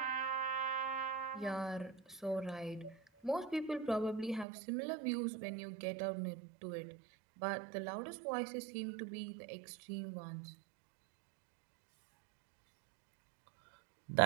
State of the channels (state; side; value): drops out; left; at 4.5 s